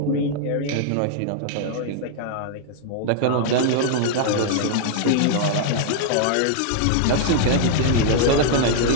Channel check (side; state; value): both; different; correlation 0.00